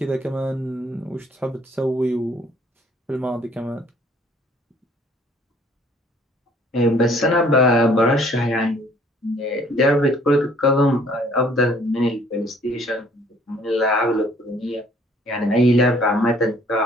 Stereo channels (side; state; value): both; normal; correlation 0.58